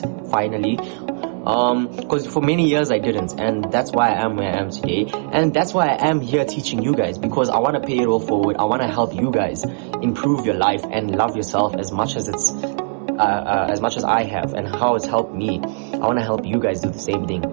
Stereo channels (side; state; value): left; silent; digital silence